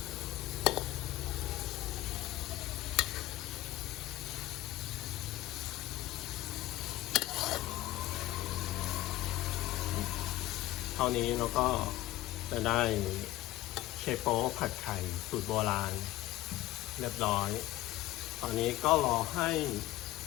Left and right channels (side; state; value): right; quieter; 16.1 dB